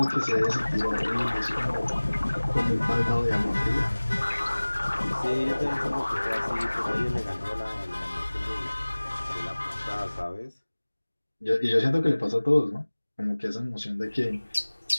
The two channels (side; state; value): both; inverted; correlation -1.00